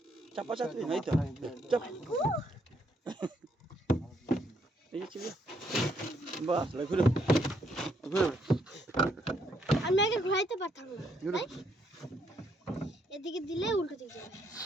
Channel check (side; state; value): both; normal; correlation 0.72